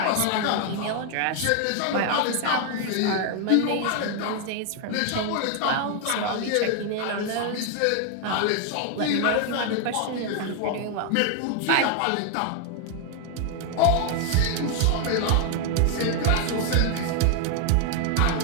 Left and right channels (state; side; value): different; both; correlation 0.00